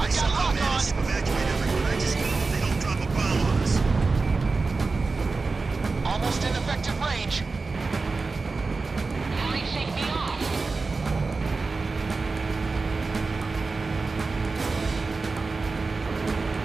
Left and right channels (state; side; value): quieter; left; 4.0 dB